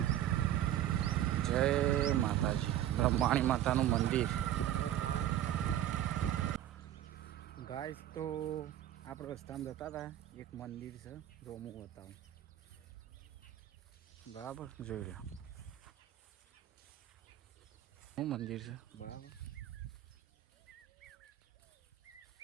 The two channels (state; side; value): quieter; left; 12.0 dB